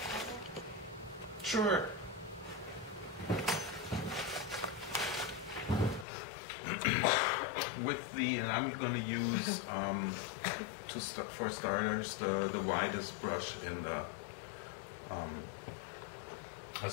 Sure. With the, and I'm going to use for starters the widest brush in the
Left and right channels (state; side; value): drops out; right; at 6.1 s